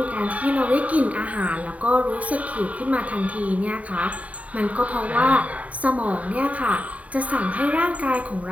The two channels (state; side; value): late; left; 0.068 ms